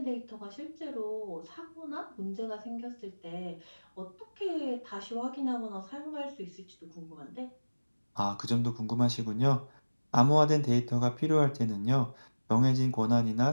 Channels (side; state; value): both; inverted; correlation -1.00